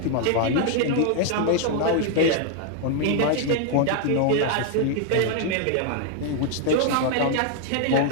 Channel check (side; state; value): both; different; correlation 0.00